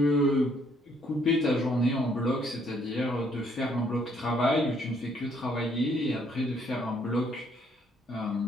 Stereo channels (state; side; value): normal; both; correlation 0.67